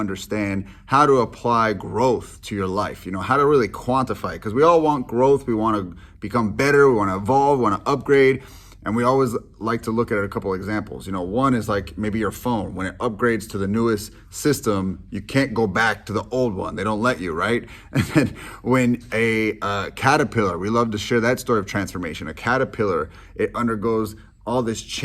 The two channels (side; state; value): both; identical; correlation 1.00